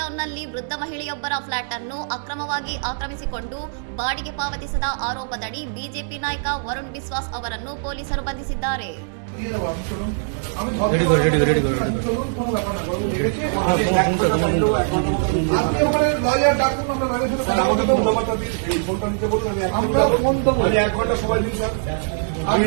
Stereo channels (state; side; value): silent; left; digital silence